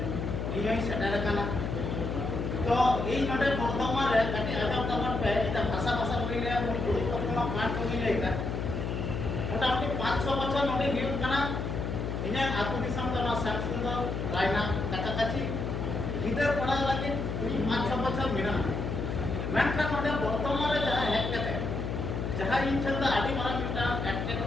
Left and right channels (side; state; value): left; noise; hum, 3 dB below the sound